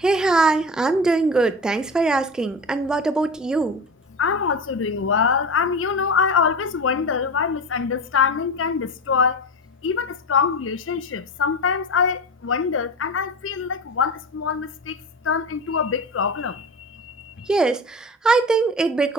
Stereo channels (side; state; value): both; normal; correlation 0.28